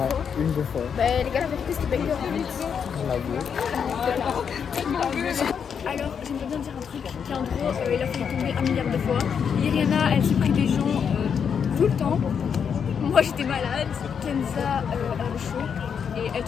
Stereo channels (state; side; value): quieter; right; 7.1 dB